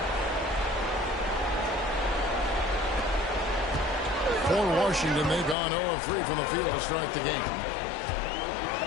For Washington, they've gone 0 of 3 from the field to start the game.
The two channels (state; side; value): drops out; right; at 5.6 s